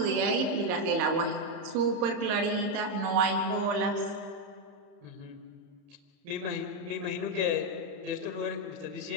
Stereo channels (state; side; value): late; left; 32 ms